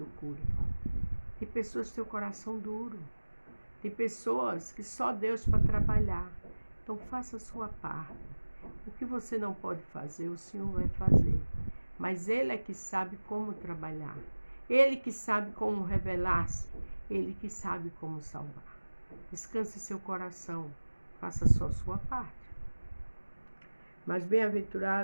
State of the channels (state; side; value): inverted; both; correlation -1.00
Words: cure. Tem pessoas que têm o coração duro. Tem pessoas que só Deus para trabalhar. Então faça a sua parte. O que você não pode fazer, o Senhor vai fazer. Mas Ele é que sabe como trabalhar. Ele que sabe como revelar-se. Ele que sabe como salvar. Descanse seu coração. Faça só a sua parte. Mas